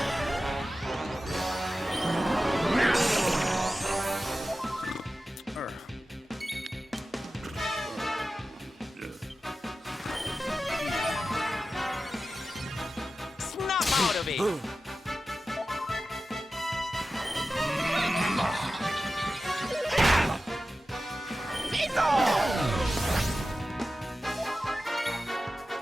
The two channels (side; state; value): both; normal; correlation 0.94